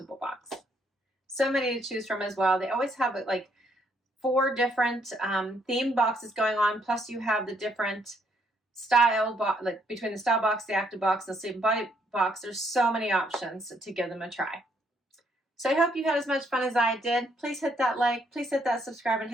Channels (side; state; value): both; normal; correlation 0.71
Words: box. So many to choose from as well. They always have like 4 different theme boxes going on. Plus you have the different style, like between the style box, the active box, and the sleep and body box. There's so many options to give them a try. So I hope you had as much fun as I did. Please hit that like, please hit that subscribe, and